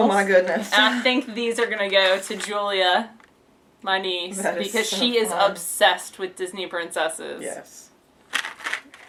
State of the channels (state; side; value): identical; both; correlation 1.00